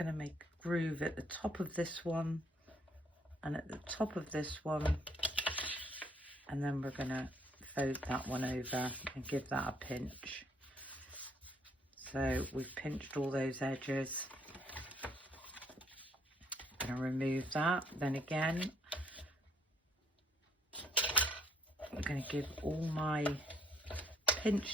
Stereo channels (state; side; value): normal; both; correlation 0.65